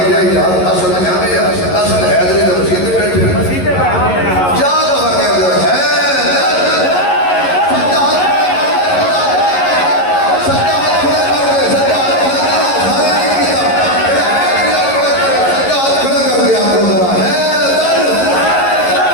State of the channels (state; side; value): late; right; 11 ms